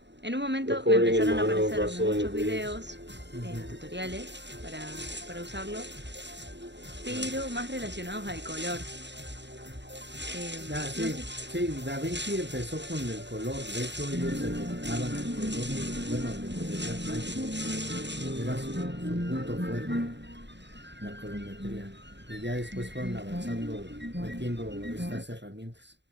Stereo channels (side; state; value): left; late; 0.52 ms